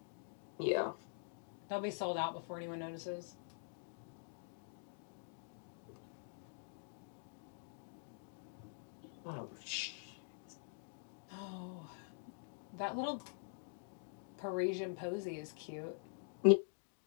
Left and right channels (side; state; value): right; silent; digital silence